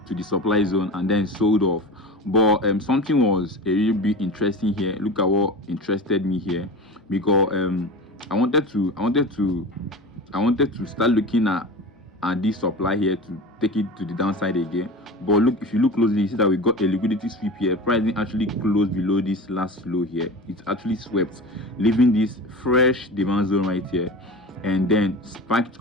supply zone and then sold off. But something was a little bit interesting here. Look at what interested me here, because I wanted to start looking at this supply here to take it to the downside again. But look, if you look closely, you see that we got a liquidity sweep here. Pricing actually closed below this last low here. It's actually swept, leaving this fresh demand zone right here, and then spiked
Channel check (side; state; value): both; normal; correlation 0.31